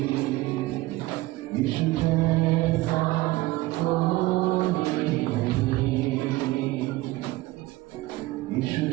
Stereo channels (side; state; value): left; quieter; 18.7 dB